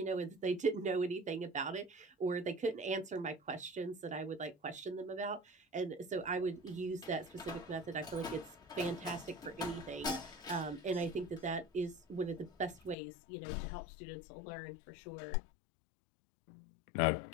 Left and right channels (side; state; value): right; drops out; at 13.0 s